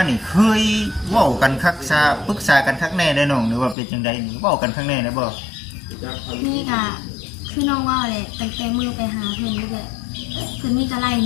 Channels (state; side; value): drops out; right; at 3.8 s